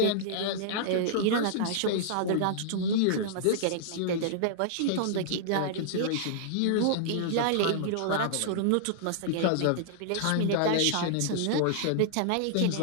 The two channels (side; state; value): both; different; correlation -0.01